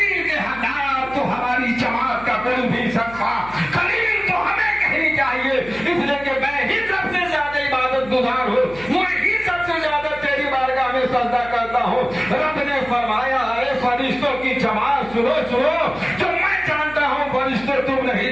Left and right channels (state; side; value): noise; left; hum, 18 dB below the sound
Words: के हकदार तो हमारी जमात का कोई भी सकता, खलील तो हमें कहनी चाहिए, इसलिए कि मैं ही सबसे ज्यादा इबादत गुजार हूँ, मैं ही सबसे ज्यादा तेरी बारगाह में सजदा करता हूँ। रब ने फरमाया, अरे फरिश्तों की जमात सुनो सुनो, जो मैं जानता हूँ फरिश्ते तुम